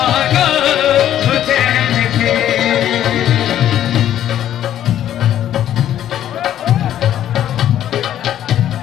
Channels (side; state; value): right; quieter; 11.3 dB